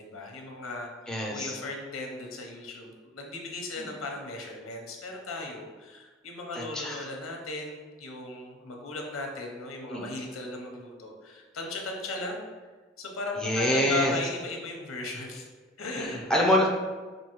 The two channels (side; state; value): both; normal; correlation 0.39